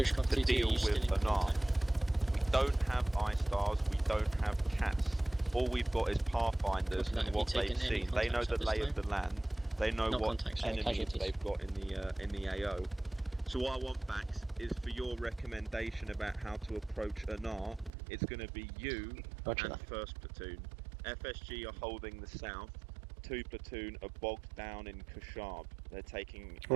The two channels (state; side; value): drops out; left; at 17.9 s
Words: got to 22, deal you still in with an arm. contact. We don't have I-stars, we don't have cats. All we've got is pathfinders Have and you what they've taken any seen. They know contacts the at this lay of time? the land. They know Not what contacts, sorry, enemies casualties. they've got in the AO. So what I want, Bax, is for your recommendation about how to approach Anar. It's going to be you Roger and that. 1st Platoon. FSG are holding the south. 2 Platoon are bogged down in Kashab. They're taking